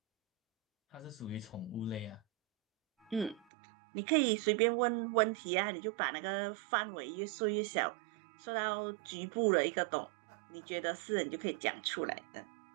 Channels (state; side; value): drops out; left; at 3.5 s